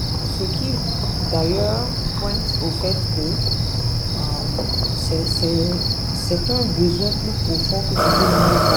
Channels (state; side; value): identical; both; correlation 1.00